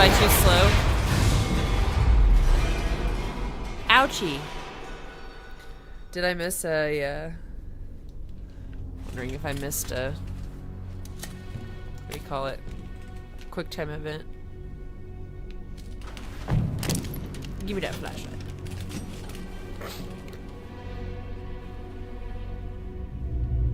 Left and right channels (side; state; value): both; identical; correlation 1.00